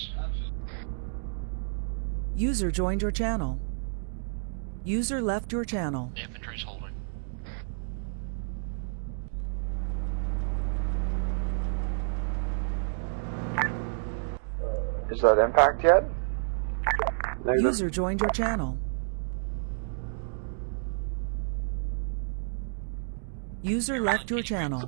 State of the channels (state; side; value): silent; left; digital silence